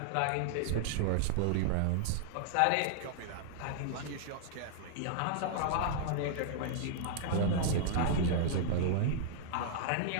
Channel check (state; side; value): different; both; correlation -0.01